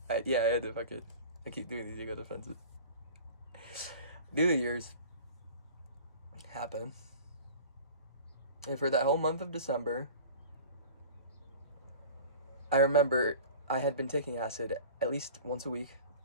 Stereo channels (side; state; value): both; inverted; correlation -0.40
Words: Yeah, I had to fucking, I keep doing these ego defenses. New Year's happened. And for that whole month of December, I remember I had been taking acid at least once a week,